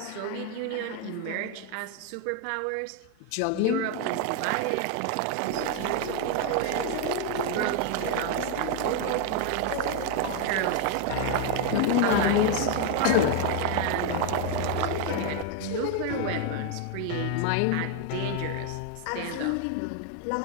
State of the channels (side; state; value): both; different; correlation 0.01